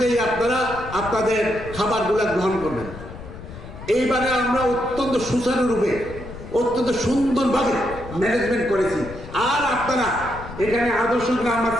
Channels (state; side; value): noise; left; rumble, 13 dB below the sound